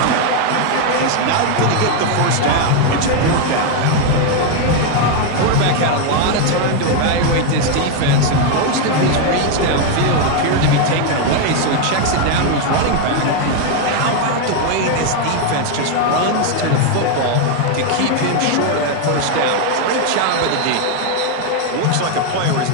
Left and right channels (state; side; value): different; both; correlation 0.01